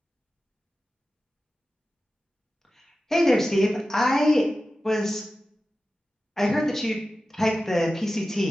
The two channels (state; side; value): normal; both; correlation 0.94